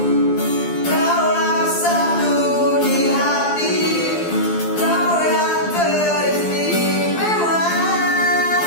Kaulah satu di hati, kau yang teristimewa.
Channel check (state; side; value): late; right; 12 ms